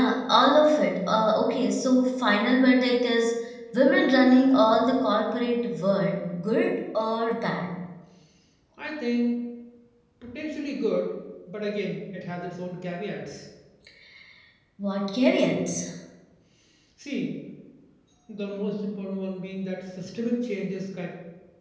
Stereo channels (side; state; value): both; identical; correlation 1.00